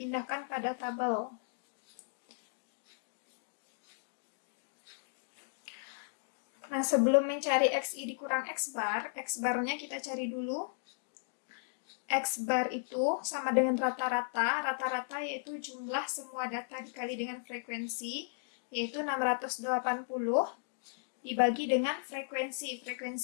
pada tabel. Nah, sebelum mencari XI dikurang X bar-nya kita cari dulu. X bar itu sama dengan rata-rata. Rata-rata yaitu jumlah semua data dikali dengan frekuensi, yaitu 680 dibagi dengan frekuensi.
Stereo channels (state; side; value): silent; right; digital silence